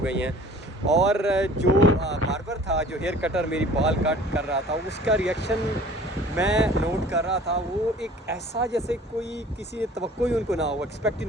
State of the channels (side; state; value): both; normal; correlation 0.48